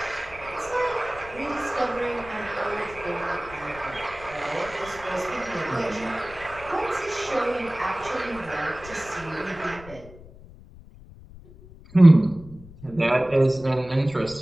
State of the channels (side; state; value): left; noise; rumble, 19 dB below the sound